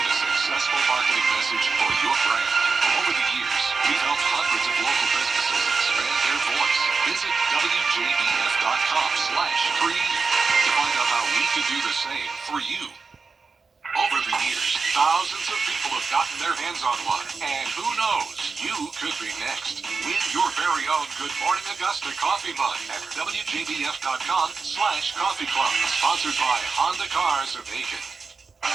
a successful marketing message for your brand. Over the years, we've helped hundreds of local businesses expand their voice. Visit WJBF.com/creative to find out how we can do the same for you. Over the years, thousands of people have gotten their hands on one, and who knows, you could be next. Win your very own Good Morning Augusta coffee mug at WJBF.com/coffee club, sponsored by Honda Cars of Aiken.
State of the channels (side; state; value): left; quieter; 4.7 dB